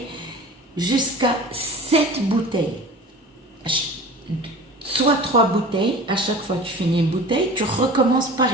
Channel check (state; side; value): normal; both; correlation 0.39